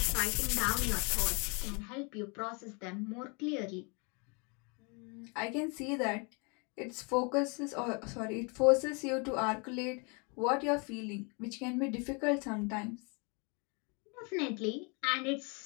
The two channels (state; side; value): quieter; right; 33.0 dB